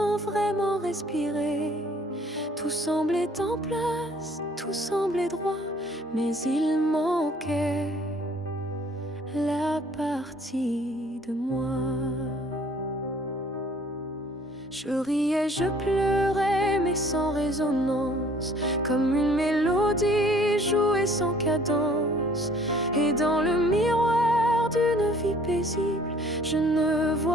vraiment respirer. Tout semblait en place, tout semblait droit, mais il manquait la partie de moi. Je riais, je pleurais, mais sans résonance, comme une mélodie jouée sans cadence. Et dans le miroir d'une vie paisible, je ne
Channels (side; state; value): both; normal; correlation 0.56